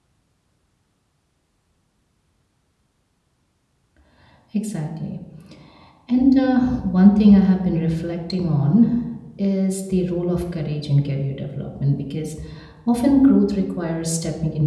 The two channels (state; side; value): identical; both; correlation 1.00